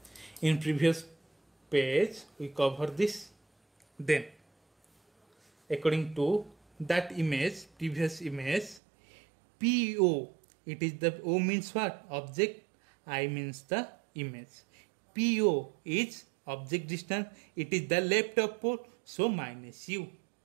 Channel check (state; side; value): drops out; left; at 8.8 s